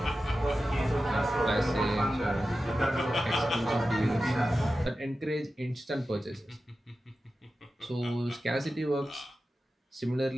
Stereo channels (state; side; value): normal; both; correlation 0.93